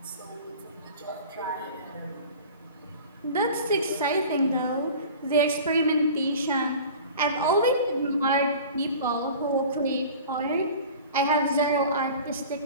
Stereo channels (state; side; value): inverted; both; correlation -0.40